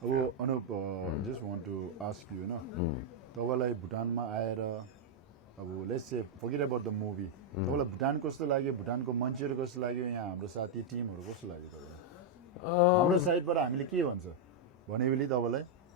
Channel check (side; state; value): both; normal; correlation -0.03